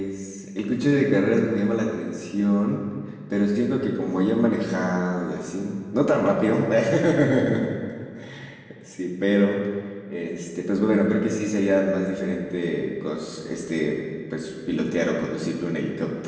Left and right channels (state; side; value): identical; both; correlation 1.00